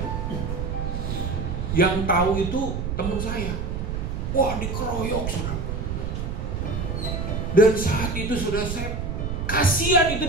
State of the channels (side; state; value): right; noise; rumble, 3 dB below the sound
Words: Yang tahu itu teman saya. Wah, dikeroyok sudah. Dan saat itu sudah saya kasihan